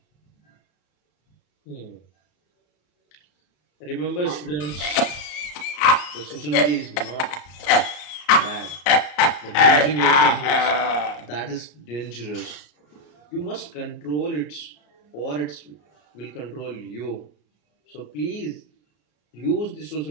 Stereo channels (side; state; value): right; late; 34 ms